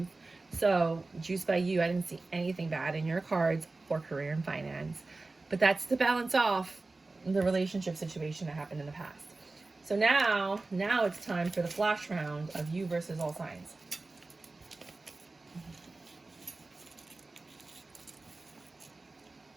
So, juice by you, I didn't see anything bad in your cards for career and finance. But that's to balance off the relationship situation that happened in the past. So now it's time for the flash round of you versus all signs.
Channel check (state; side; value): quieter; left; 3.4 dB